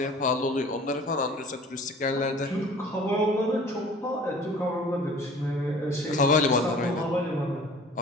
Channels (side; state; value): both; normal; correlation 0.47